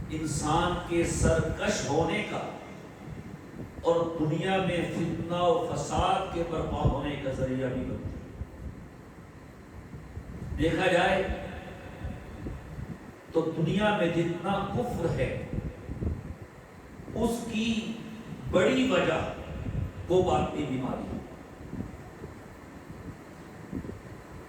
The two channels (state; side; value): identical; both; correlation 1.00